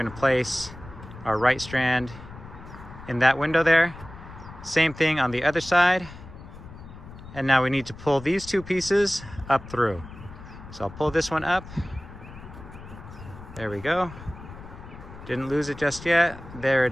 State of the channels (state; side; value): noise; left; rumble, 15 dB below the sound